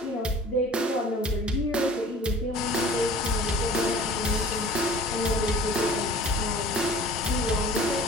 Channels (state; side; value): normal; both; correlation 0.45